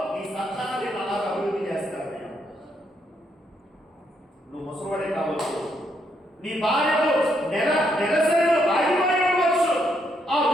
నీ సంతానాన్ని అలా అభివృద్ధి చేస్తాను నేను. నువ్వు ముసలివాడే కావచ్చు, నీ భార్యకు నెలసరిలో ఆగిపోయి ఉండవచ్చు, ఆ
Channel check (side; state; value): both; normal; correlation 0.76